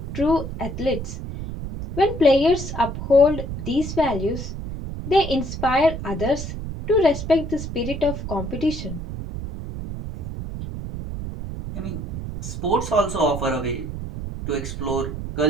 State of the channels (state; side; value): noise; right; rumble, 7 dB below the sound